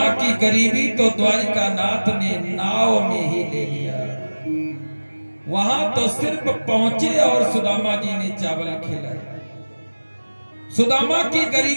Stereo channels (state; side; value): inverted; both; correlation -1.00